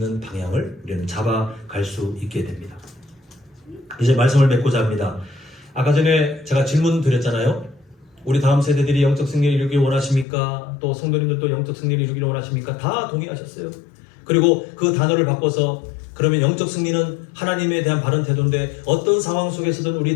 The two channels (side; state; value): right; drops out; at 10.2 s